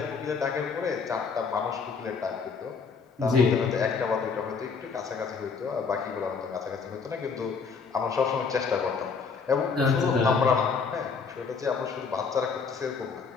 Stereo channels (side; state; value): right; quieter; 5.3 dB